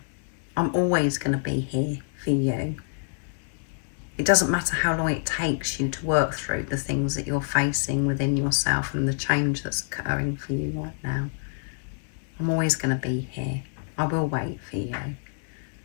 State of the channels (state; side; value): silent; right; 60 dB below the other